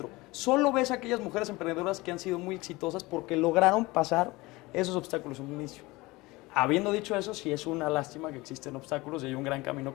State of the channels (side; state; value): right; quieter; 21.6 dB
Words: Solo ves a aquellas mujeres emprendedoras que han sido muy exitosas porque lograron pasar esos obstáculos en un inicio. Habiendo dicho eso, sí es una lástima que existen obstáculos y hay un gran camino